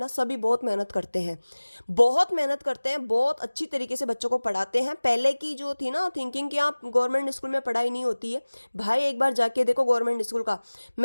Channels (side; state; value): both; inverted; correlation -1.00